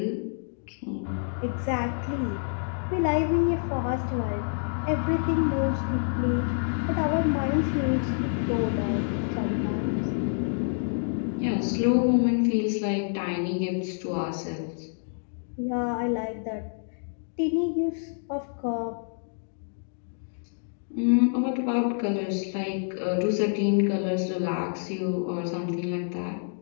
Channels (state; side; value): silent; right; digital silence